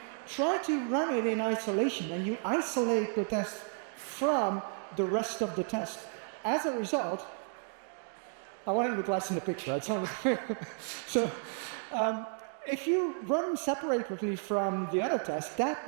try to run it in isolation, and you isolate the test from the rest of the test. As a result, I want to look less in the picture, right? So if you run separately from the other tests,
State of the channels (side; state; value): left; silent; 56 dB below the other